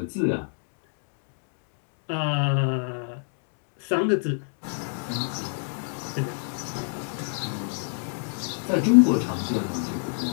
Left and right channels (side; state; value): right; silent; 59 dB below the other